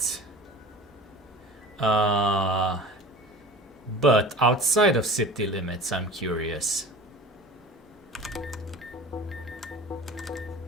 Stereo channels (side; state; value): both; normal; correlation 0.38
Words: But outside of city limits, I'm curious.